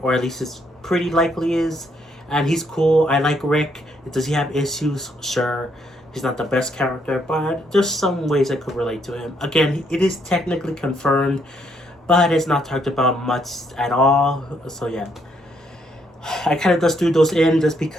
or at least it's pretty likely is, and he's cool. I like Rick. Does he have issues? Sure. He's not the best character, but there's some ways I could relate to him. Again, it is technically confirmed, but it's not talked about much at all. So yeah, I kind of just threw those in just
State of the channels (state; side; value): normal; both; correlation 0.72